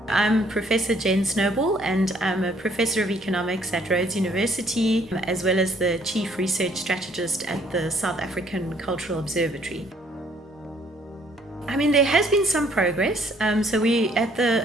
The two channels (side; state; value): both; normal; correlation 0.63